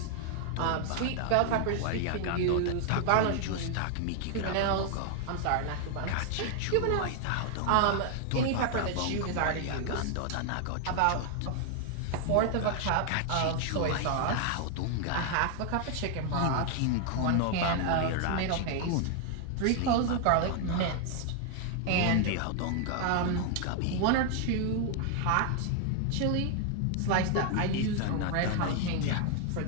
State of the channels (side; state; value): both; different; correlation 0.00